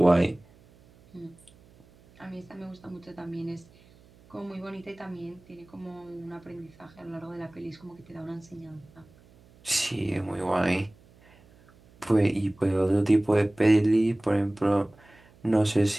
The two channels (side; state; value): right; noise; hum, 27 dB below the sound